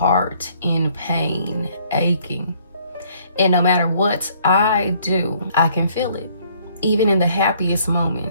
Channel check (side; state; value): both; inverted; correlation -0.62